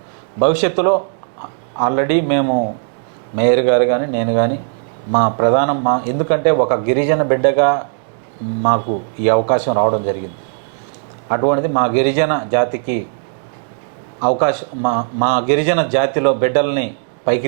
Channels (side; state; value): left; silent; digital silence